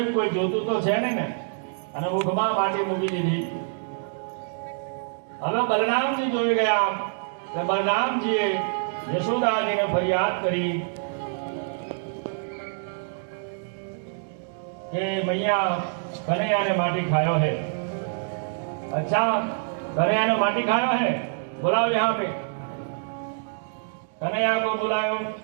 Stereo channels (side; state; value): left; silent; digital silence